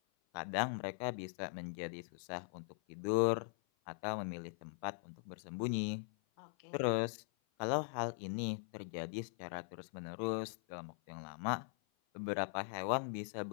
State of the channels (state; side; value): silent; right; 50 dB below the other